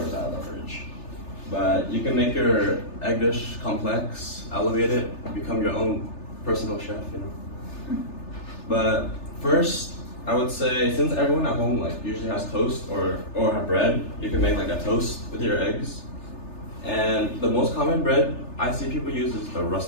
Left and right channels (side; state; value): right; late; 3.3 ms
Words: out of the fridge. But you can make your egg dish complex, elevate it, become your own personal chef, you know. But first, I would say, since everyone at home like usually has toast or have bread, you can make like a toast with your eggs. And the most common bread I see people use is the